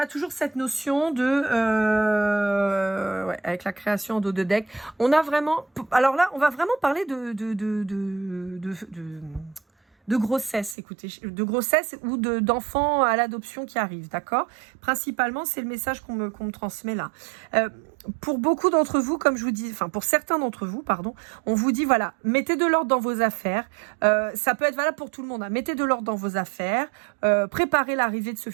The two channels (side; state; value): left; drops out; at 10.8 s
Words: toujours cette notion de ouais, avec la création de deck. On a vraiment. Alors là, on va vraiment parler de grossesse, écoutez, de grossesse ou d'enfants à l'adoption qui arrivent, d'accord? Principalement, c'est le message qu'on me transmet là. Pour beaucoup d'entre vous, comme je vous dis, enfin pour certains d'entre vous, pardon, on vous dit voilà, mettez de l'ordre dans vos affaires. Ça peut être valable pour tout le monde. Hein. Mettez de l'ordre dans vos affaires. Préparez l'arrivée de ce